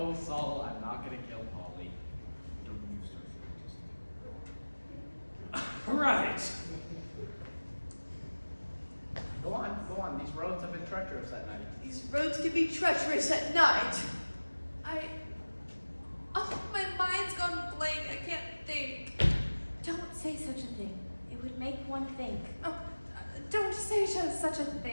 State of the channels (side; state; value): both; inverted; correlation -1.00